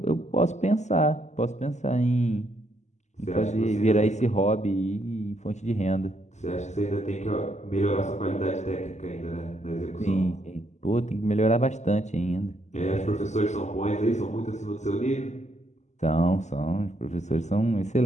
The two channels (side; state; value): right; late; 0.34 ms